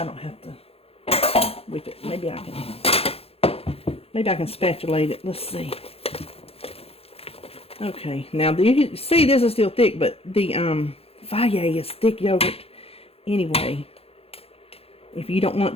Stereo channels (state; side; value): late; right; 0.28 ms